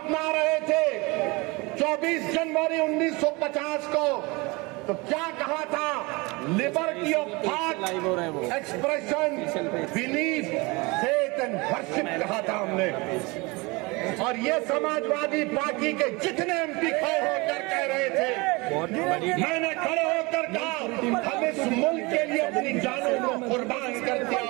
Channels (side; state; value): left; quieter; 25.6 dB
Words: रहे थे 24 जनवरी 1950 को, तो क्या कहा था? Liberty of thought, expression, belief, faith and worship कहा था हमने। और ये समाजवादी पार्टी के जितने एमपी खड़े होकर कह रहे थे, मैंने खड़े होकर कहा हम इस मुल्क के लिए करते